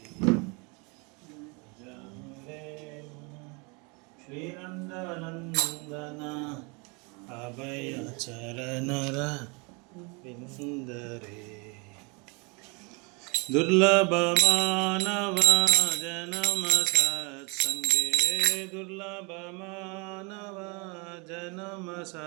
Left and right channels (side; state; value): left; quieter; 30.9 dB